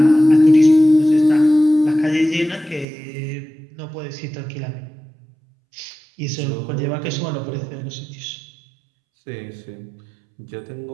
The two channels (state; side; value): drops out; left; at 2.9 s